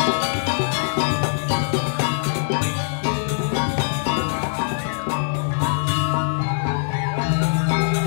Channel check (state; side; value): silent; right; digital silence